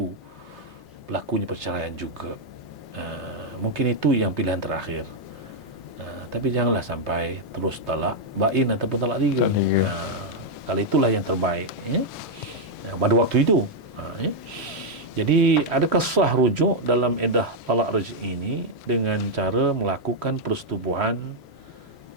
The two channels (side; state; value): both; normal; correlation -0.02